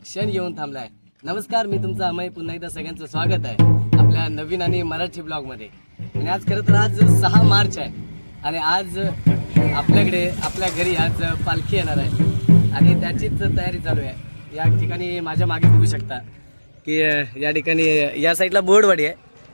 येऊन थांबलाय. नमस्कार, मी तुमचा अमय. पुन्हा एकदा सगळ्यांचं स्वागत आहे आपल्या नवीन आणि मराठी ब्लॉगमध्ये. आणि आज खरं तर आज 6 मार्च आहे आणि आज आपल्याकडे आपल्या घरी आज पालखी येणार आहे आणि त्याचीच तयारी चालू आहे. या ठिकाणी माझ्या मागे बघू शकता की या ठिकाणी या साईडला बोर्डवाडी आहे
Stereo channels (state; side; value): inverted; both; correlation -1.00